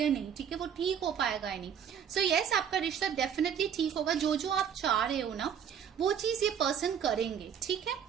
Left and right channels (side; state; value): left; quieter; 8.2 dB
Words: नहीं, ठीक है, वो ठीक हो पाएगा या नहीं। सो यस, आपका रिश्ता डेफिनेटली ठीक होगा। जो जो आप चाह रहे हो ना, वो चीज ये पर्सन करेंगे, ठीक है।